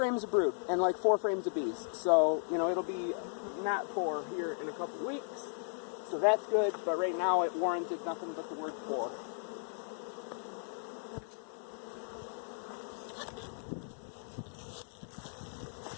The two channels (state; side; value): silent; right; 54 dB below the other